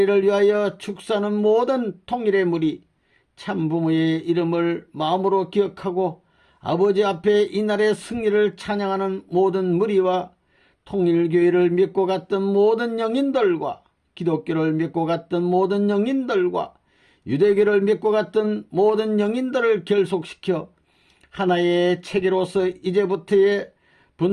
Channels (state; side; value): identical; both; correlation 1.00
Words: 위하여 축사하는 모든 통일의 무리, 참부모의 이름을 마음으로 기억하고 아버지 앞에 이날의 승리를 찬양하는 모든 무리와 통일교회를 믿고 갔던 모든 영인들과 기독교를 믿고 갔던 모든 영인들과 유대교를 믿고 갔던 모든 영인들을 결속시켜 하나의 체계로서 이제부터의